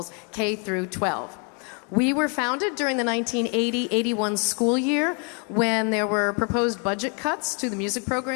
K through 12. We were founded during the 1980-81 school year when there were proposed budget cuts to the music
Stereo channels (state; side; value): quieter; right; 36.8 dB